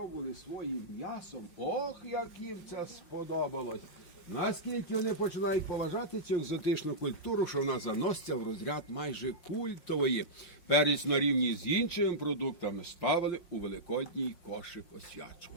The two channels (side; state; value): right; late; 5.5 ms